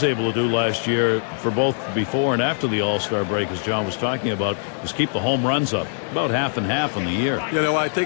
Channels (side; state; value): right; silent; digital silence